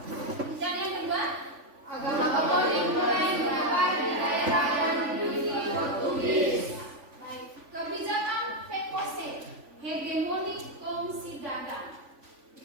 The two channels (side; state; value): left; late; 3.5 ms